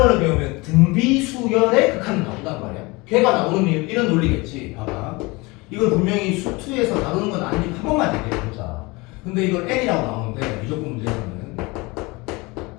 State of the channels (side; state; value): right; quieter; 24.7 dB